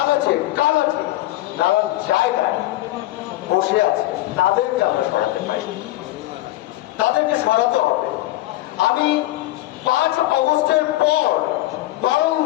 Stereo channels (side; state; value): right; quieter; 16.8 dB